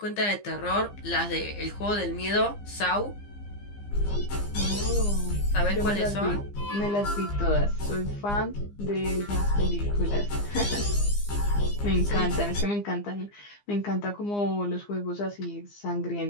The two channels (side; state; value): right; late; 15 ms